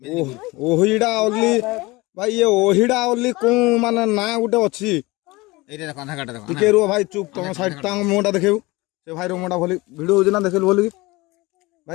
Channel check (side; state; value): right; quieter; 22.2 dB